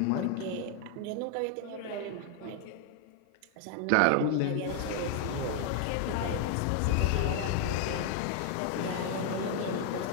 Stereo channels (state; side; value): different; both; correlation 0.00